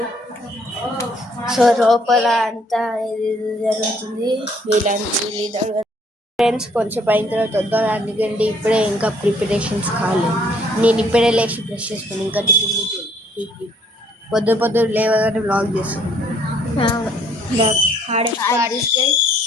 సో లోపల అంతా ఇది జరుగుతుంది. వీళ్ళంతా ఫ్రెండ్స్ కొంచెం అయిన తర్వాత వద్దాం, అందుకంటే ఇప్పుడే ఇంకా ప్రిపరేషన్స్ కాలేదు. నేను ఇప్పుడే లేచి బ్రష్ చేసుకుని ఇంకా టిఫిన్ పొద్దు లేవగానే వ్లాగ్ చేస్తాను.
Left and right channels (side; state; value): both; normal; correlation 0.63